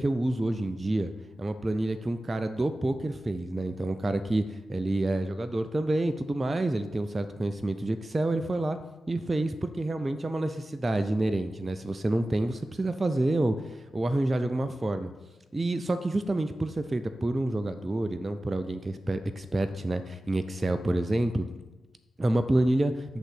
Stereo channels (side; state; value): both; normal; correlation 0.96